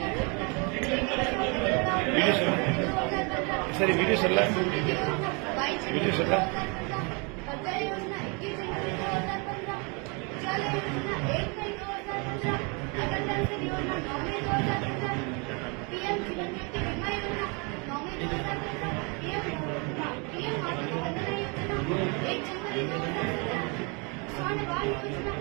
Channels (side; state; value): left; quieter; 32.1 dB